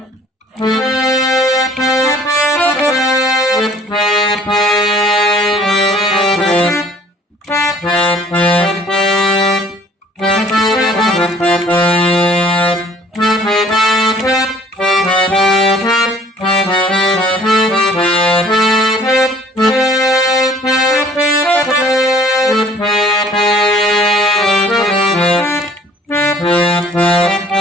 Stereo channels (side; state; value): both; normal; correlation 0.54